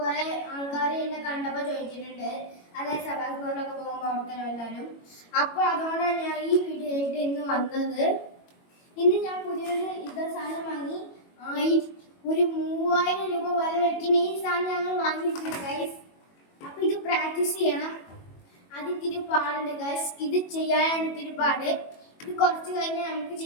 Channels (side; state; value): right; late; 21 ms